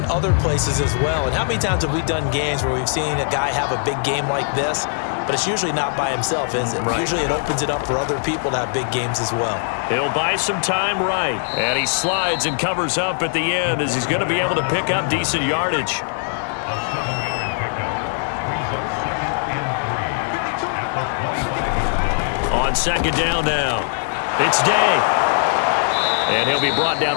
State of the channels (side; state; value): right; silent; 59 dB below the other